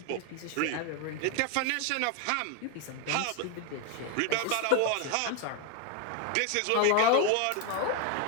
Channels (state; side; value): different; both; correlation 0.01